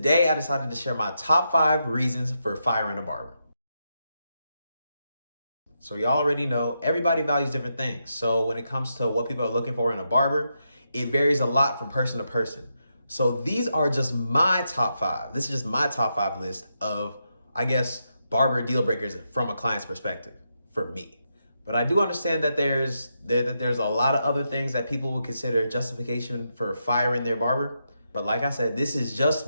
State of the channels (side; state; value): both; inverted; correlation -0.84